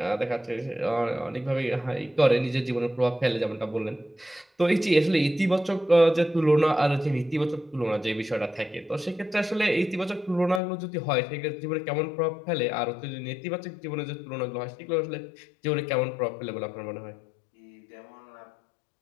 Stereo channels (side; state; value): right; drops out; at 10.6 s